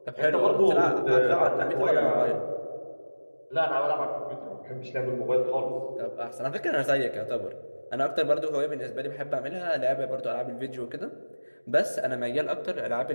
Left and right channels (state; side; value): inverted; both; correlation -1.00